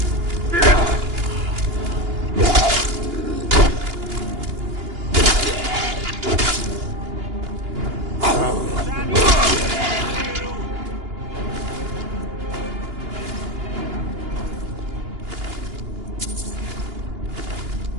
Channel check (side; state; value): left; late; 2.9 ms